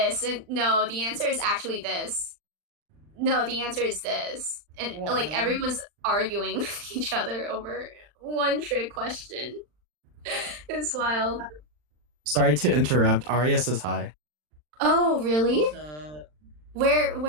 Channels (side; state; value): left; late; 40 ms